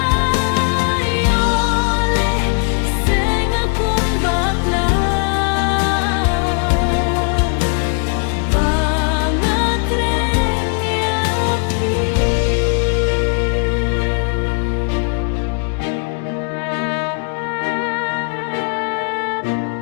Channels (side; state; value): right; quieter; 37.8 dB